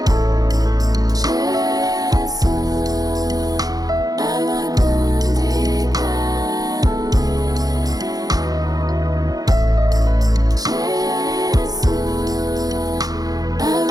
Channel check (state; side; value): late; left; 0.18 ms